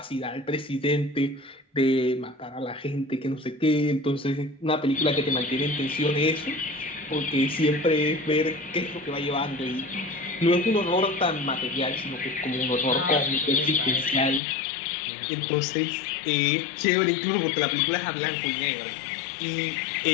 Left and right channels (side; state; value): right; drops out; at 14.4 s